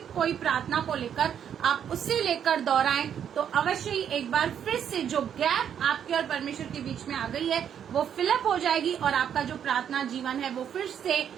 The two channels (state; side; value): quieter; left; 8.8 dB